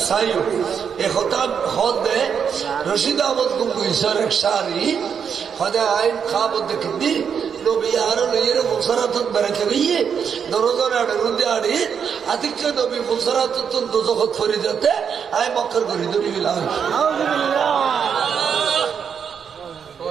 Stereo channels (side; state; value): left; quieter; 7.1 dB